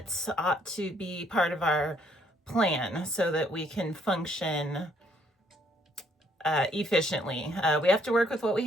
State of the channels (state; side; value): normal; both; correlation 0.67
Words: ought to be part of our plan so that we can function efficiently. We have to work with what we